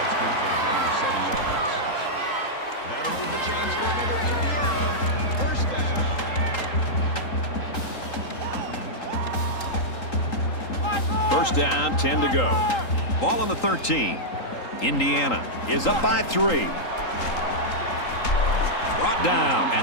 good for a gain of 7 yards. That'll move the chains for another Indiana. 1st down. 1st down, 10 to go. Ball on the 13. Indiana is up by 3. Brought down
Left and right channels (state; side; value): late; right; 3.8 ms